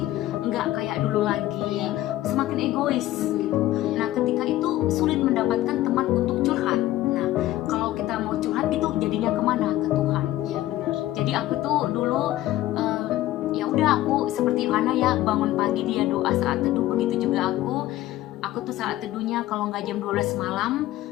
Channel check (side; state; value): right; quieter; 15.1 dB